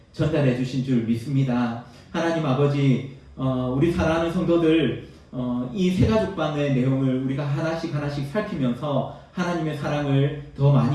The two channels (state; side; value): identical; both; correlation 1.00